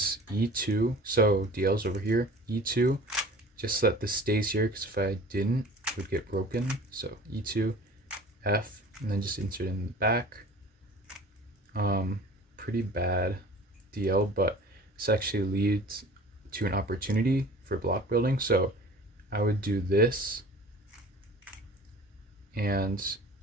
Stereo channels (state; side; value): normal; both; correlation 0.44